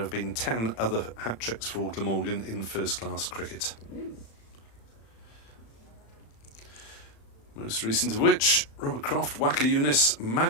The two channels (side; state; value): right; late; 35 ms